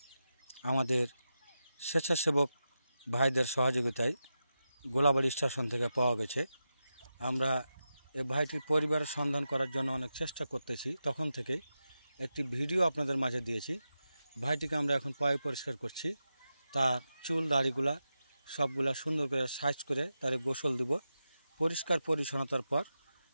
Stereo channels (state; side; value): inverted; both; correlation -0.90